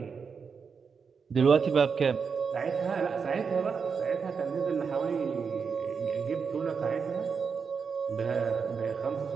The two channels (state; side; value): quieter; left; 5.8 dB